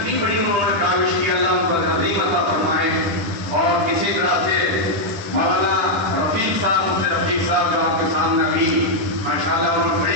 بڑی انہوں نے کاوش کی، اللہ ان کو عظیم عطا فرمائے۔ اور اسی طرح سے مولانا رفیق صاحب، مفتی رفیق صاحب جو آپ کے سامنے ابھی ماشاءاللہ انہوں نے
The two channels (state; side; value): late; left; 10 ms